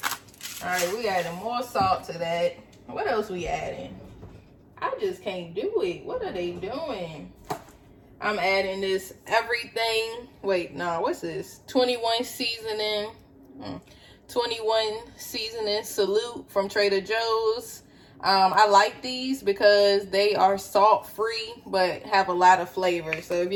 All right, we adding more salt to that. What else we adding? I just can't do it. What are they doing? I'm adding this everything. Wait, no, what's this? 21 seasoning. 21 seasoning salute from Trader Joe's. I like these because they are salt free but have a lot of flavor. So if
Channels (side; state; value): both; identical; correlation 1.00